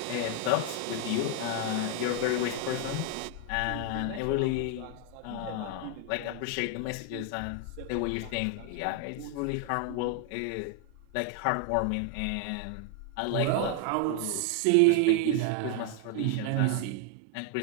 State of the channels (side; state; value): both; different; correlation 0.00